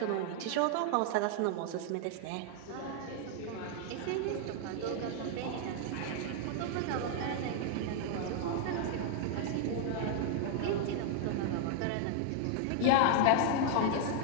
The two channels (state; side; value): different; both; correlation 0.00